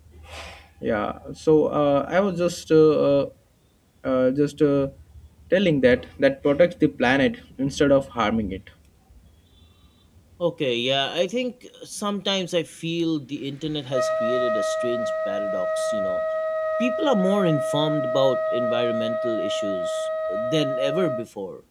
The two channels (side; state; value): both; identical; correlation 1.00